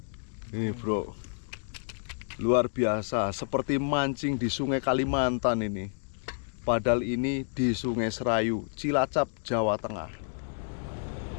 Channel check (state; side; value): silent; right; digital silence